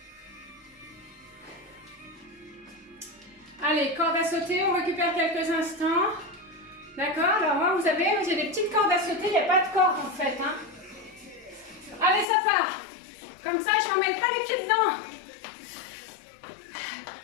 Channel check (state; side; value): drops out; right; at 12.2 s